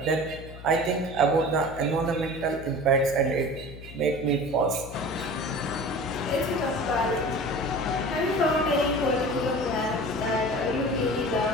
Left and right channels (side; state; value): left; noise; hum, 14 dB below the sound